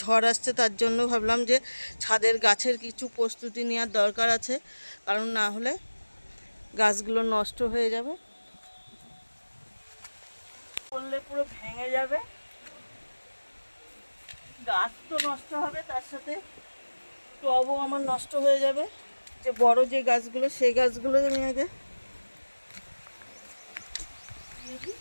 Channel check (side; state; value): both; inverted; correlation -1.00